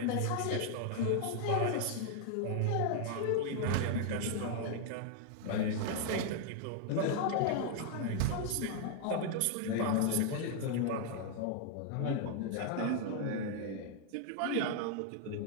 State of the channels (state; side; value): different; both; correlation 0.00